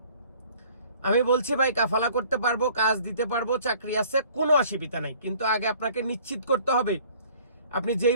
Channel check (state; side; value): inverted; both; correlation -0.54